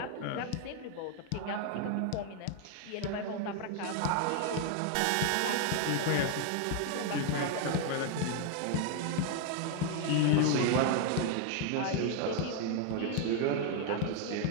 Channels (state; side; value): different; both; correlation 0.00